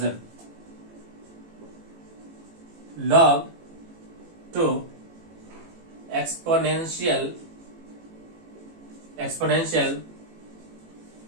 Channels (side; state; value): left; late; 18 ms